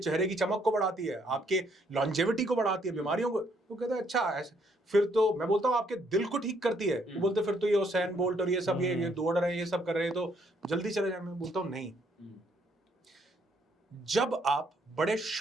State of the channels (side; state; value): both; normal; correlation 0.70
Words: की चमक को बढ़ाती है, आपके लॉन्जेविटी को बढ़ाती है, बीमारियों को। तो कहते हैं अच्छा ऐसे, फिर तो मैं बोलता हूँ आपके दिल को ठीक करती है। वो बोलते फिर तो ये उसैन बोल्ट और ये सब ये दौड़ रहे हैं, ये सब कर रहे हैं, तो जल्दी चले जाए। मैं बोलता हूँ नहीं, जब आप बड़े